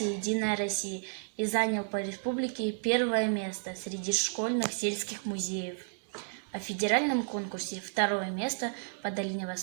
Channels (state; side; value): silent; left; digital silence